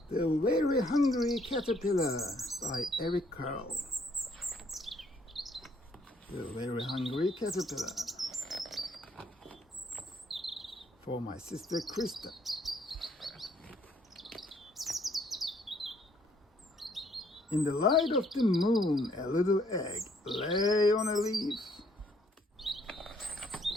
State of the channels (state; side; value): normal; both; correlation 0.66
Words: The Very Hungry Caterpillar by Eric Carle. The Very Hungry Caterpillar. For my sister Krista. In the light of the moon, a little egg lay on a leaf.